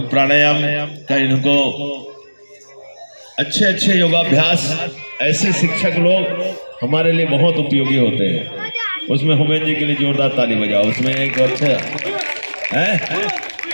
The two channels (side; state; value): both; inverted; correlation -1.00